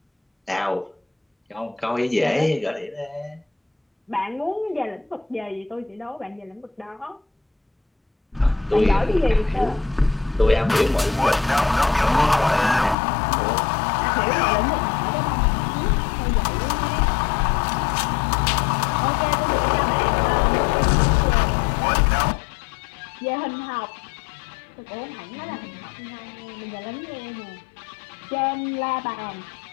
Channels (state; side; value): drops out; right; at 13.0 s